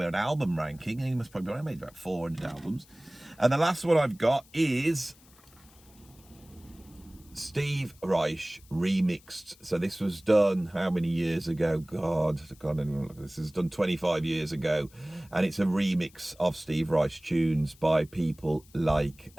an album ranking. He must probably, I made about 400 albums. And the last one I've got is Steve Reich remixed. So this was done how many years ago? God, this is done 25 years ago. And it's a remix of Steve Reich tunes by people like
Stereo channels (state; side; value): noise; left; hiss, 27 dB below the sound